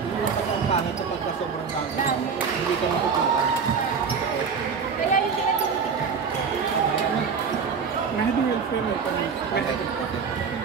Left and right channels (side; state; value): left; quieter; 5.9 dB